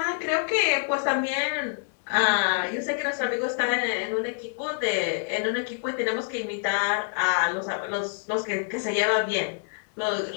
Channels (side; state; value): right; silent; digital silence